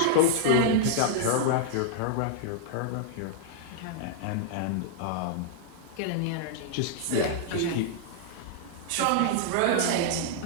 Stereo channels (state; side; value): different; both; correlation -0.01